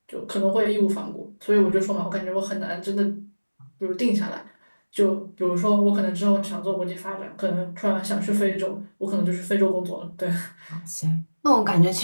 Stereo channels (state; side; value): inverted; both; correlation -1.00